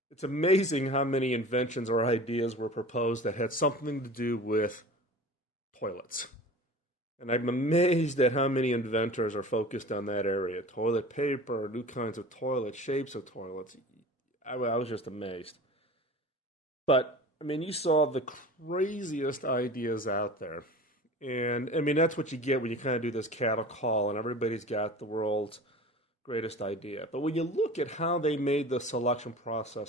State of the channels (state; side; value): normal; both; correlation 0.38